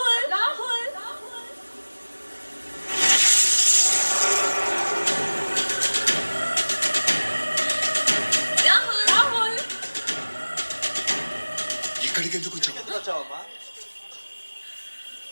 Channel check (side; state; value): both; inverted; correlation -1.00